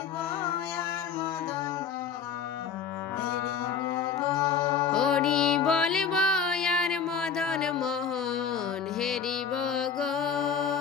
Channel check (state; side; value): quieter; right; 6.7 dB